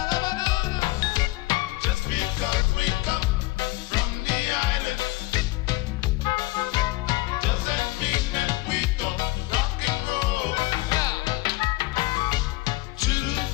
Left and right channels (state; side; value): quieter; right; 20.3 dB